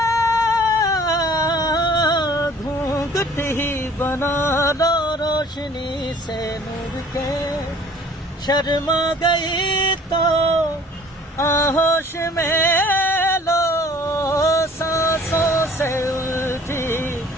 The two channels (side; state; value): both; normal; correlation 0.52